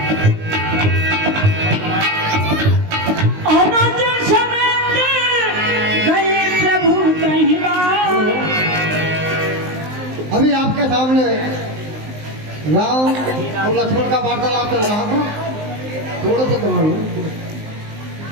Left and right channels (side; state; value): left; late; 19 ms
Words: अभी आपके सामने राम और लक्ष्मण का वार्तालाप चल रहा था, थोड़ा सा कमा लो।